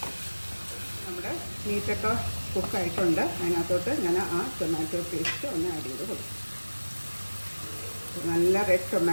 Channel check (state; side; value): inverted; both; correlation -1.00